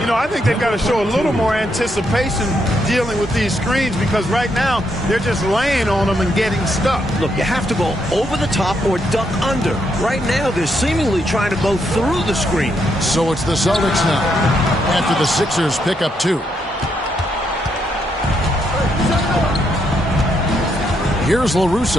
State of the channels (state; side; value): normal; both; correlation 0.78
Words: You know, I think they've got to show a little more anticipation dealing with these screens, because right now they're just laying on them and getting stuck. Look, you have to go over the top or duck under. Right now, they're seemingly trying to go through the screen. So it's the Celtics now, after the Sixers pick up 2. Here's